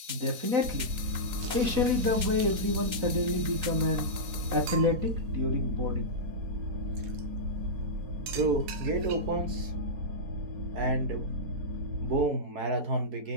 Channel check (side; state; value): left; late; 3.8 ms